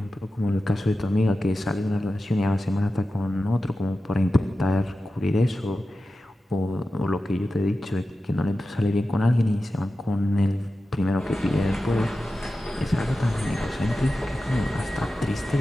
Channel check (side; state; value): both; normal; correlation 0.93